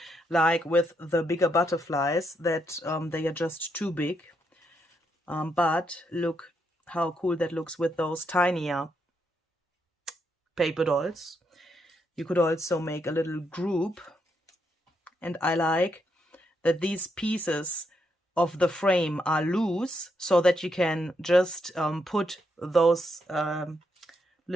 like with the bigger butterflies, that they are just too big. But look how cool that looks with those tinier paper dolls. You could also make a little group, and I like that these pieces of the frame are loose so that you can just put those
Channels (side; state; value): both; normal; correlation 0.79